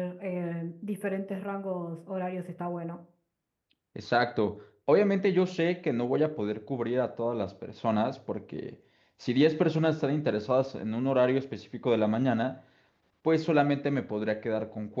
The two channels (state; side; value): identical; both; correlation 1.00